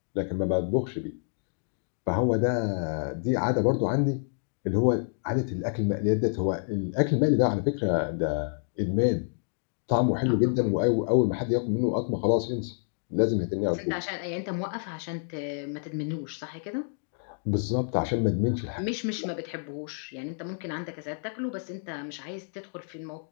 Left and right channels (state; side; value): silent; right; 59 dB below the other